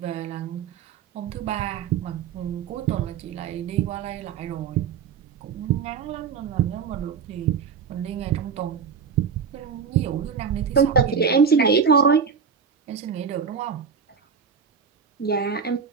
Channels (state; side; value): quieter; left; 6.4 dB